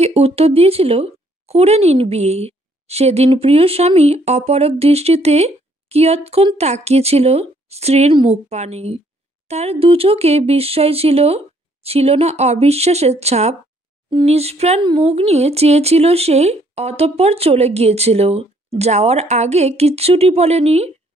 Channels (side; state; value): both; normal; correlation 0.66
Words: উত্তর দিয়েছিল, করে নিন বিয়ে। সেদিন প্রিয় স্বামী অপলক দৃষ্টিতে কিয়ৎক্ষণ তাকিয়েছিল স্ত্রীর মুখ পানে। তার দু চোখে বিস্ময় ছিল, ছিল না অবিশ্বাসের ছাপ। নিষ্প্রাণ মুখ নিয়ে চেয়েছিল সে, অতঃপর চলে গিয়েছিল। যাওয়ার আগে কিচ্ছুটি বলেনি।